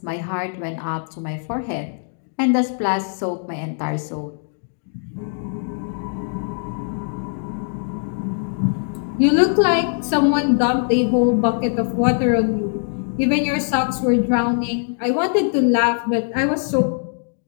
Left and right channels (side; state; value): right; silent; digital silence